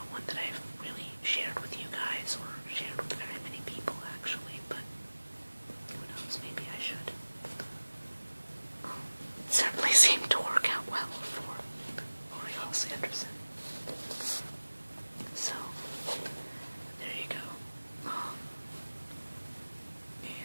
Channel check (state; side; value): inverted; both; correlation -1.00